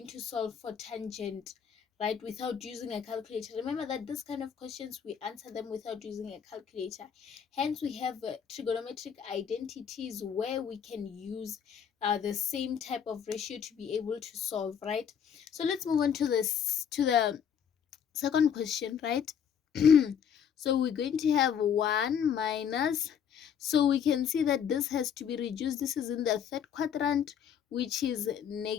to solve for tangent, right, without using a calculator? Remember that this kind of questions, we answer them without using a calculator. Hence we have trigonometric identities where we can use the same type of ratio to be able to solve, right? So let's move on to the second question, right? So we're going to have 1 minus, so we can see that this has to be reduced. This is in the third quadrant, which is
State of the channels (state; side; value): quieter; right; 8.0 dB